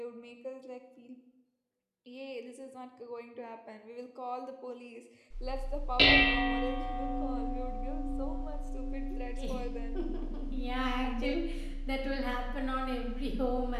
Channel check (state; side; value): identical; both; correlation 1.00